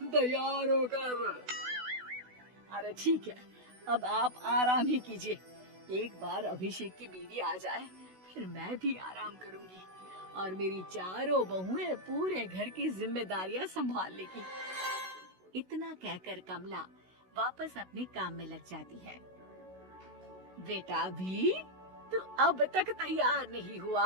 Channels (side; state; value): left; late; 16 ms